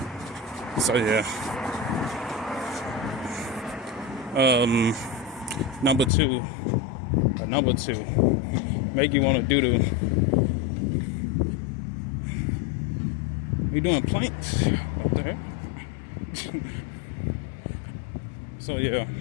So yeah. Number two, make you want to do we doing planks up there. So yeah,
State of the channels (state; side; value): drops out; right; at 6.1 s